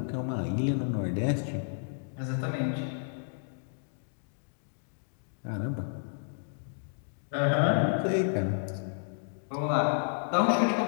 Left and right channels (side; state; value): right; silent; digital silence